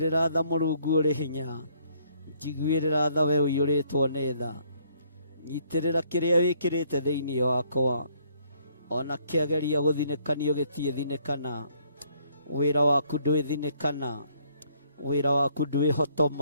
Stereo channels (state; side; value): inverted; both; correlation -0.66